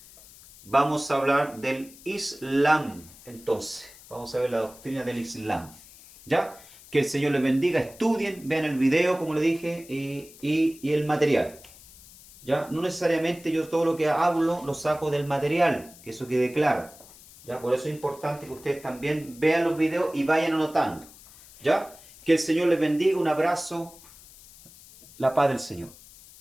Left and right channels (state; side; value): noise; left; hiss, 21 dB below the sound